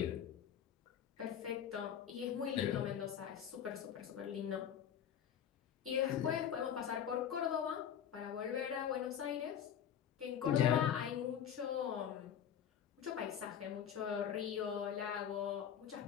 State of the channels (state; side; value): quieter; right; 9.0 dB